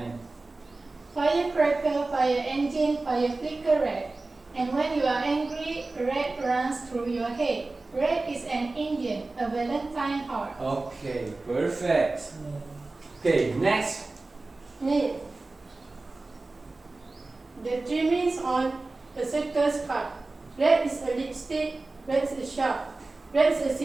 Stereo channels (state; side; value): quieter; left; 3.3 dB